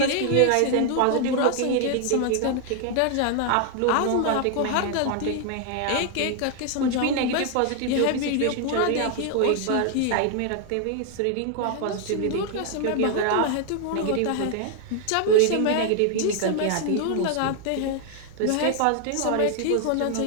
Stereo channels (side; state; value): both; different; correlation 0.00